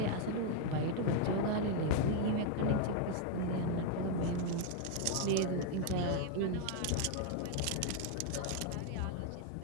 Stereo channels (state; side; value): different; both; correlation 0.00